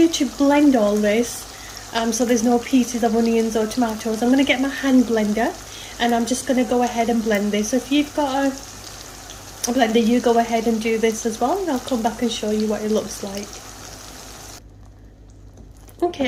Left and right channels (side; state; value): both; identical; correlation 1.00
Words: to blend all this, so there's no pieces of onions or tomatoes, I'm going to get my hand blender, and I'm just going to go ahead and blend this. So if you've got a blender, you go ahead and do this as well, and I'll come back and show you what it looks like. Okay,